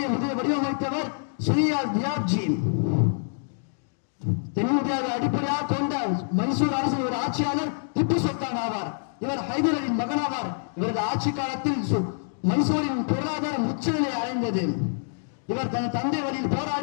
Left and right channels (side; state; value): right; silent; digital silence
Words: வடிவமைத்தவர் ஸ்ரீயால் தியாப்ஜி. தென்னிந்தியாவை அடிப்படையாக கொண்ட மைசூர் அரசின் ஒரு ஆட்சியாளர் திப்பு சுல்தான் ஆவார். இவர் ஹைதர் அலியின் மகனாவார். இவரது ஆட்சி காலத்தில் மைசூரின் பொருளாதாரம் உச்சநிலை அடைந்தது. இவர் தன் தந்தை வழியில்